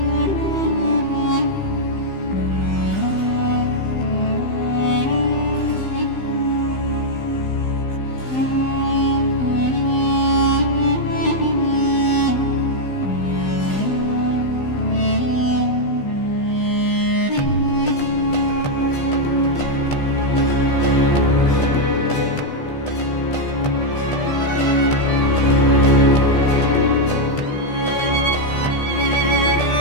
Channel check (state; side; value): late; right; 15 ms